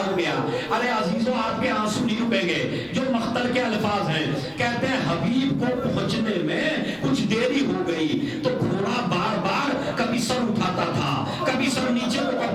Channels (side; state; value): both; identical; correlation 1.00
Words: گیا. ارے عزیزوں آپ کے آنسو نہیں رکیں گے. جو مقتل کے الفاظ ہیں، کہتے ہیں حبیب کو پہنچنے میں کچھ دیری ہو گئی تو گھوڑا بار بار کبھی سر اٹھاتا تھا، کبھی سر نیچے کو